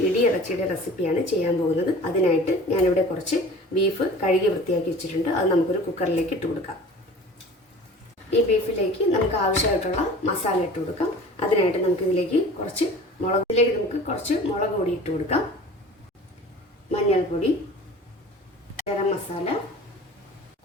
ഇടിയിറച്ചിയുടെ റെസിപ്പിയാണ് ചെയ്യാൻ പോകുന്നത്. അതിനായിട്ട് ഞാനിവിടെ കുറച്ച് ബീഫ് കഴുകി വൃത്തിയാക്കി വെച്ചിട്ടുണ്ട്. അത് നമുക്കൊരു കുക്കറിലേക്ക് ഇട്ട് കൊടുക്കാം. ഈ ബീഫിലേക്ക് നമുക്ക് ആവശ്യമായിട്ടുള്ള മസാല ഇട്ട് കൊടുക്കാം. അതിനായിട്ട് നമുക്കിതിലേക്ക് കുറച്ച് മുളക് പൊടി ഇട്ട് കൊടുക്കാം, മഞ്ഞൾപ്പൊടി, ഗരം മസാല,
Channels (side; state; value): both; normal; correlation 0.42